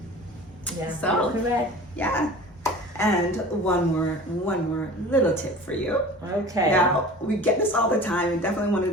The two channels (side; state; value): both; normal; correlation 0.40